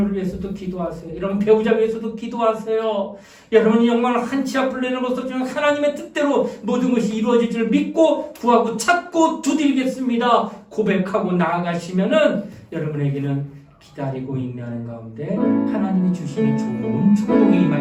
위해서도 기도하세요. 여러분 배우자 위해서도 기도하세요. 여러분이 정말 한치 앞을 내놓고서 하나님의 뜻대로 모든 것이 이루어질 줄 믿고 구하고 찾고 두드리겠습니다. 고백하고 나아가시면은 여러분에게는 기다리고 있는 가운데 하나님이 주시는 좋은 축복이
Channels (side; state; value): both; identical; correlation 1.00